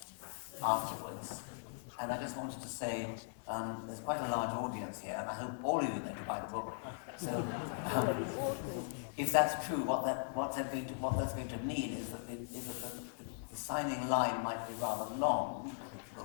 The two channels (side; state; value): right; silent; digital silence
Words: afterwards, and I just wanted to say there's quite a large audience here, and I hope all of you are going to buy the book. So, if that's true, what that's going to mean is that the signing line might be rather long, I think it will